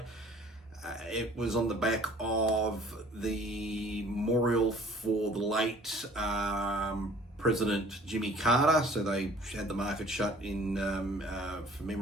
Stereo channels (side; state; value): both; normal; correlation 0.52